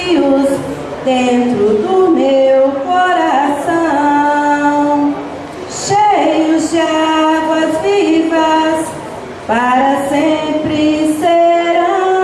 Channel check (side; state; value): both; identical; correlation 1.00